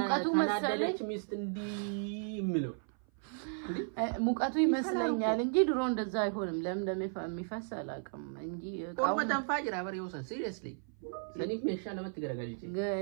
መሰለኝ ሚስት እንዲ ምለው ሙቀቱ ይመስለኛል እንጂ ድሮ እንደዛ አይሆንም ለምን የሚፈስ አላቀም እንጂ ቆመዳን ፋጅራ በሬው ሲሪየስሊ ለኒፍ መሻለ መትገረጋልጂ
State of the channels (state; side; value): silent; left; 55 dB below the other